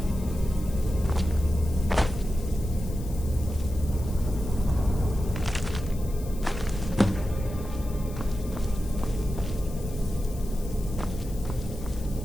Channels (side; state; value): left; noise; hiss, 19 dB below the sound